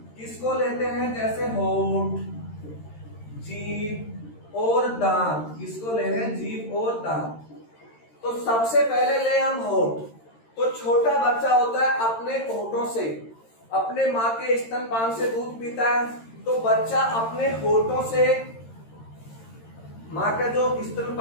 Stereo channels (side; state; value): right; late; 13 ms